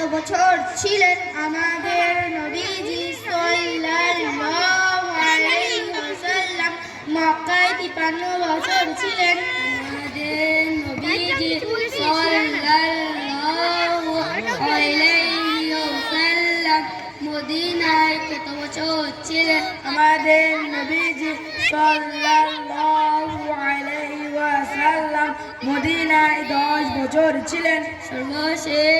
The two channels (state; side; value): identical; both; correlation 1.00